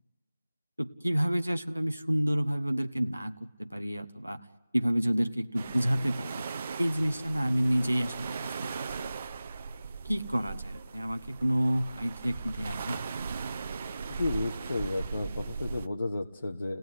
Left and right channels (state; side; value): inverted; both; correlation -0.96